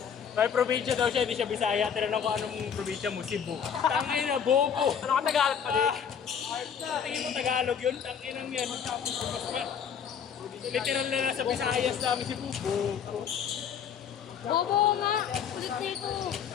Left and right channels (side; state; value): right; quieter; 7.6 dB